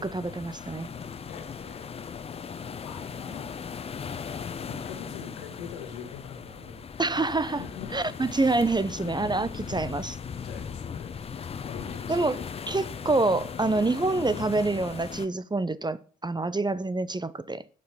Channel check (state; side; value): normal; both; correlation 0.66